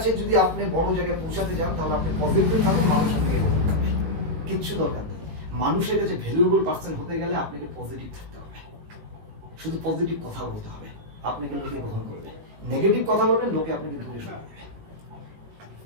যদি আপনি বড় জায়গায় পৌঁছাতে যান তাহলে আপনি পজিটিভ থাকেন, মানুষ আপনাকে কিচ্ছু দরকার নেই। মানুষের কাছে ভ্যালুয়েবল পার্সন হতে গেলে আপনাকে পজিটিভ থাকতে হবে, শুধু পজিটিভ কথা বলতে হবে, আপনাকে লোকে গ্রহণ করবে। নেগেটিভ কথা বলবেন লোকে আপনাকে দূরে সরাবে।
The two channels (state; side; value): late; left; 18 ms